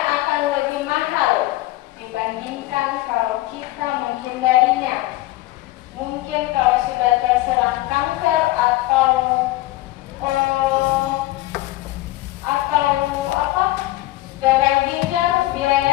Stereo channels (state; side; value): quieter; right; 17.7 dB